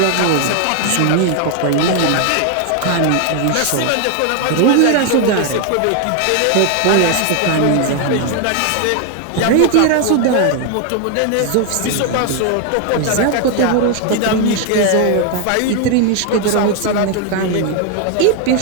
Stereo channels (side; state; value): both; different; correlation 0.01